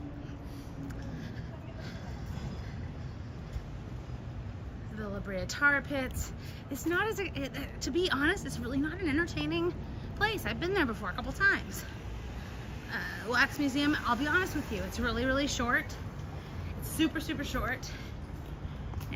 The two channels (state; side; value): identical; both; correlation 1.00